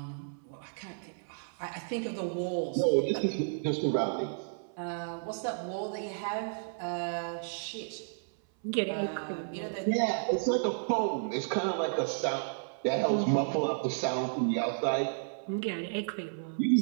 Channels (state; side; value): silent; left; 56 dB below the other